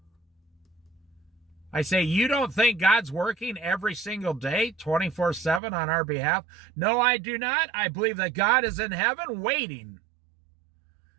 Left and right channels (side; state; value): left; drops out; at 5.6 s